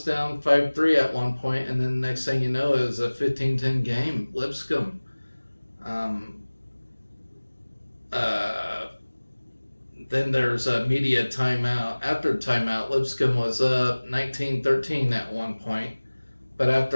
down 5-3 at one point, and then next thing you know, it was a 15-10 game. Lipscomb. Then there's a media timeout. After timeout, Lipscomb was up 19-13 at one point. But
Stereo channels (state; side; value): inverted; both; correlation -1.00